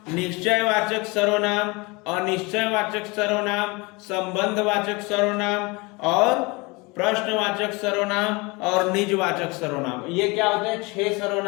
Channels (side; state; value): right; quieter; 26.3 dB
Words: निश्चयवाचक सर्वनाम, अनिश्चयवाचक सर्वनाम, संबंधवाचक सर्वनाम और प्रश्नवाचक सर्वनाम और निजवाचक सर्वनाम। ये क्या होते हैं? 6